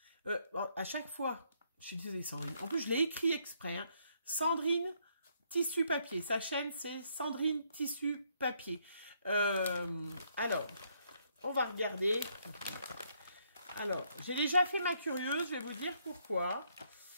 À chaque fois, je suis désolée Sandrine. En plus, je l'ai écrit exprès. Hein. Sandrine Tissu Papier. Sa chaîne, c'est Sandrine Tissu Papier. Alors, on va regarder. Alors, j'ai déjà fait ma curieuse, je vais vous dire pourquoi.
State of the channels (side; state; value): both; inverted; correlation -0.71